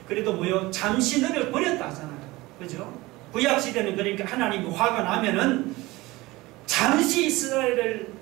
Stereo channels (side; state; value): left; quieter; 20.4 dB